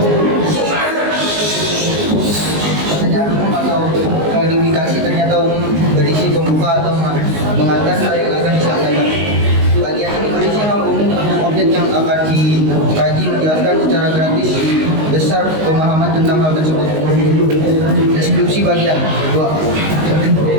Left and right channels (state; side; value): late; left; 19 ms